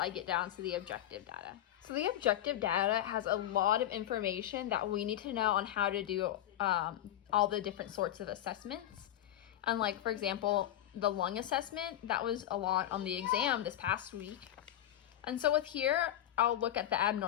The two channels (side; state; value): right; quieter; 12.4 dB